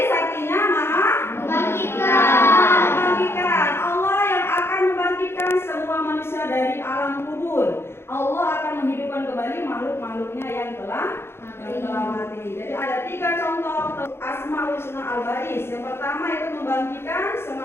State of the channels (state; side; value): late; right; 0.12 ms